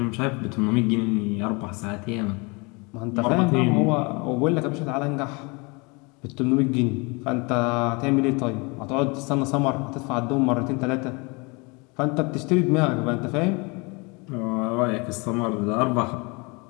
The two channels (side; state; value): right; quieter; 28.7 dB